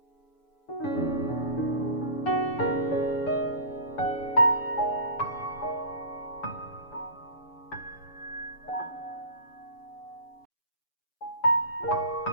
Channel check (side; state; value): right; late; 7.0 ms